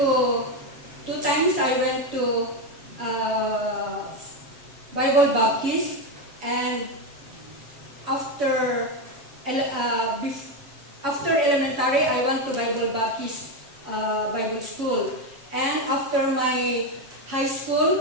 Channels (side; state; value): left; late; 7.2 ms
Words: 2 times I went to Bible Baptist, and after elementary, I went to Bible Baptist Bible School. And after my high